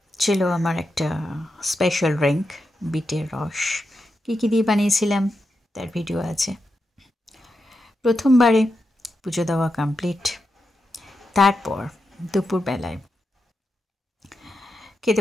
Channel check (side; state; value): both; normal; correlation 0.87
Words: ছিল আমার একটা স্পেশাল ড্রিঙ্ক, বিটের রস। কী দিয়ে বানিয়েছিলাম তার ভিডিও আছে। প্রথমবারে পুজো দেওয়া কমপ্লিট, তারপর দুপুরবেলায়